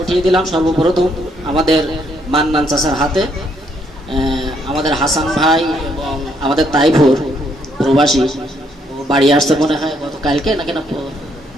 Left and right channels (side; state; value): both; normal; correlation 0.72